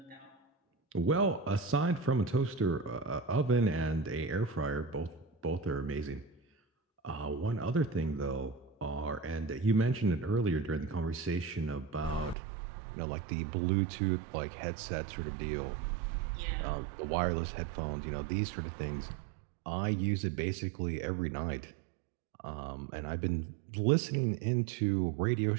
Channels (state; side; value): drops out; left; at 12.4 s